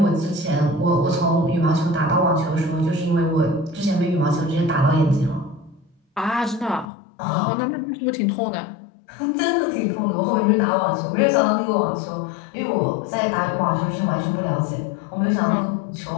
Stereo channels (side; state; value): right; drops out; at 6.9 s